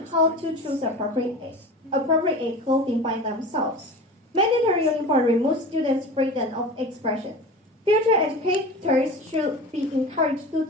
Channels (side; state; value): both; normal; correlation 0.34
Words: how to choose appropriate clothing by themselves. Mandatory uniform removes students' freedom of expression. Future educators should be encouraged to